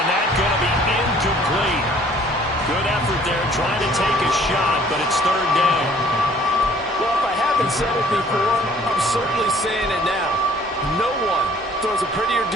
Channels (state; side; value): normal; both; correlation 0.56